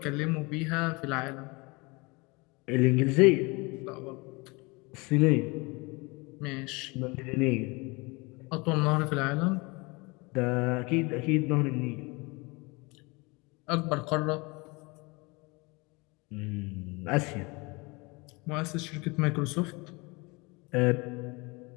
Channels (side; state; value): right; quieter; 26.5 dB